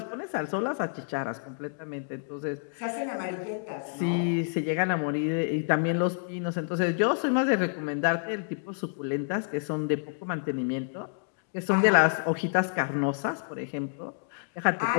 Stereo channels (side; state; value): right; silent; digital silence